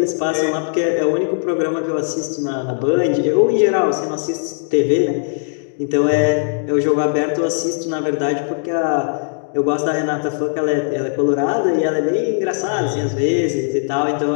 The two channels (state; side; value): silent; right; digital silence